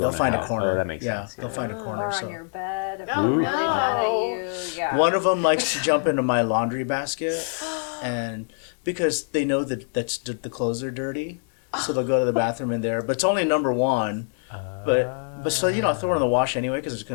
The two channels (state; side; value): silent; right; digital silence